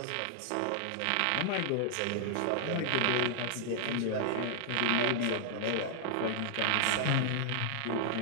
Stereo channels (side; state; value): both; different; correlation -0.01